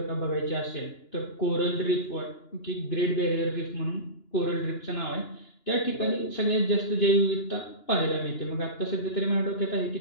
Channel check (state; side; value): late; right; 2.9 ms